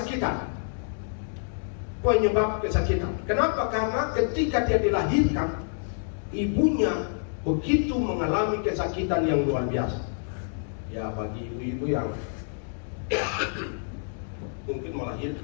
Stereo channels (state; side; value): silent; right; digital silence